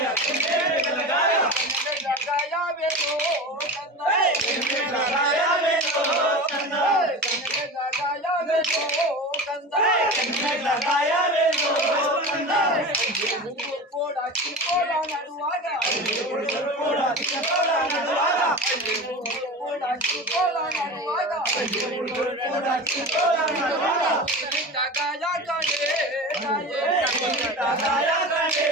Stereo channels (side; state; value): both; normal; correlation 0.30